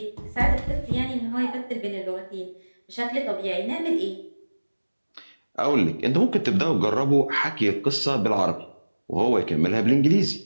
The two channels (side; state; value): both; inverted; correlation -1.00